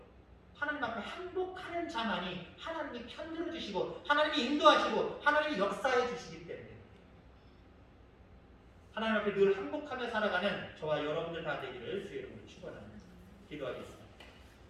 하나님 앞에 항복하는 자만이 하나님이 편들어 주시고 하나님이 인도하시고 하나님이 역사해 주시기 때문에 하나님 앞에 늘 항복하며 살아가는 저와 여러분들 다 되기를 주의 이름으로 축원합니다. 기도하겠습니다.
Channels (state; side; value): identical; both; correlation 1.00